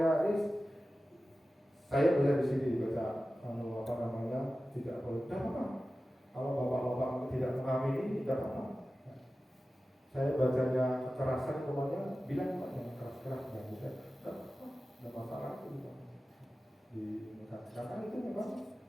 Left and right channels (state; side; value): normal; both; correlation 0.95